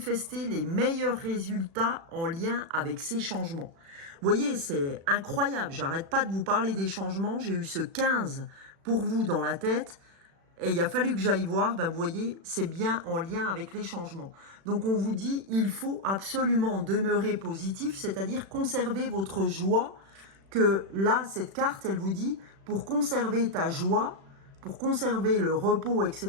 les meilleurs résultats en lien avec ces changements. Vous voyez, c'est incroyable. J'arrête pas de vous parler des changements. J'ai eu ce 15 pour vous dans la tête. Et il a fallu que j'aille voir, ben vous voyez, c'est bien en lien avec les changements. Donc on vous dit, il faut absolument demeurer positif, c'est-à-dire conserver votre joie, que là, cette carte, elle vous dit, pour conserver ta joie, pour conserver le repos, etc.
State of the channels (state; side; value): late; left; 36 ms